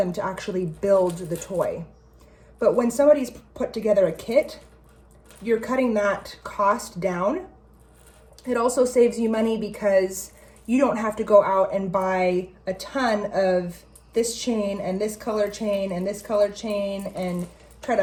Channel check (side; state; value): both; identical; correlation 1.00